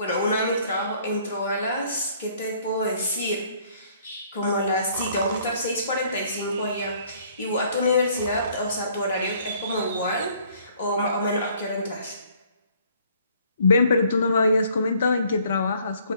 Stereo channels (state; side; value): inverted; both; correlation -0.61